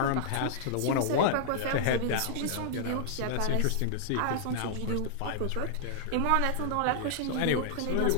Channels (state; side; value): different; both; correlation -0.01